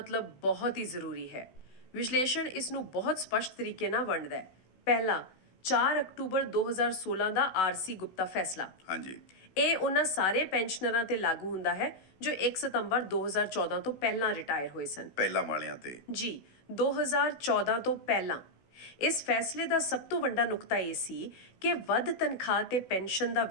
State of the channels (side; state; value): right; late; 16 ms